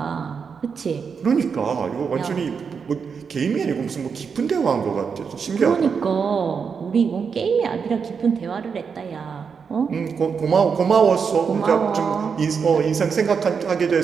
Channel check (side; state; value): left; quieter; 6.0 dB